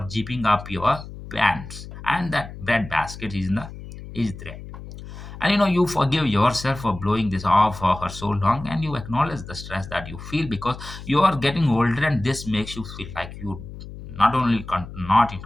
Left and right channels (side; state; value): left; noise; hum, 13 dB below the sound